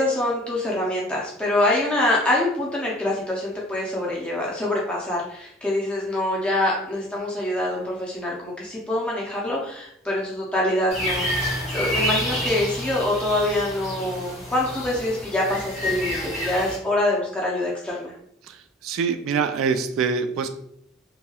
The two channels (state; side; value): normal; both; correlation 0.45